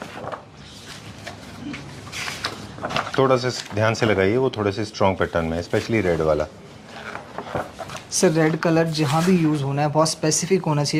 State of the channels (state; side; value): identical; both; correlation 1.00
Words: थोड़ा सा ध्यान से लगाइए, वो थोड़े से स्ट्रॉन्ग पैटर्न में, स्पेशली रेड वाला। सर रेड कलर जहाँ भी यूज़ होना है बहुत स्पेसिफिक होना